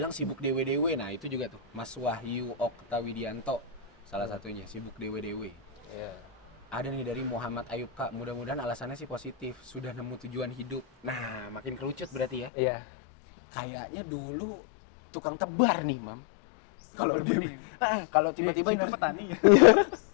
sibuk dewe-dewe, nah itu juga tuh Mas Wahyu Oktawidianto salah satunya sibuk dewe-dewe. Iya. Ada nih dari Muhammad Ayub Kak, mudah-mudahan alasannya sih positif, sudah nemu tujuan hidup. Nah makin kerucut berarti ya. Iya. Kayaknya dulu tukang tebar nih, Mam. Tebar benih. Kalau tiba-tiba Situ petani.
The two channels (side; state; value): right; drops out; at 12.5 s